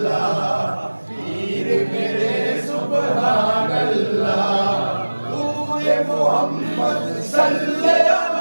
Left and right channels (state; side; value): inverted; both; correlation -1.00